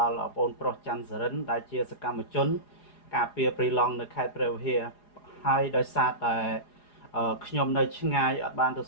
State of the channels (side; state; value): right; late; 4.9 ms